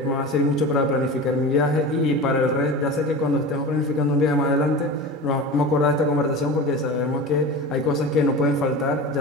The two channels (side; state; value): both; normal; correlation 0.31